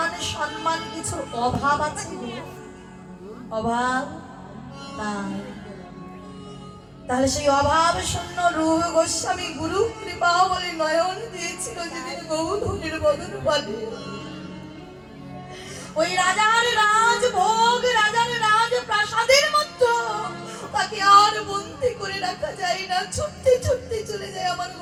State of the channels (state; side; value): identical; both; correlation 1.00